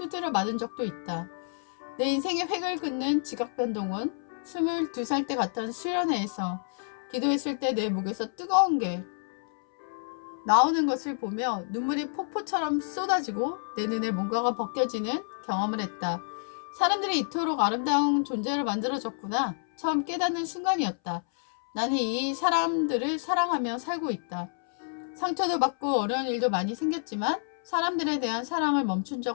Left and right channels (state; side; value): silent; right; 59 dB below the other